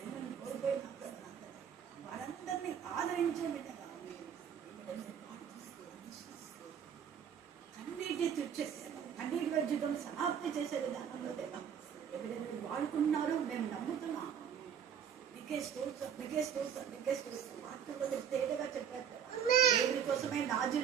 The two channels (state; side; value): quieter; left; 8.2 dB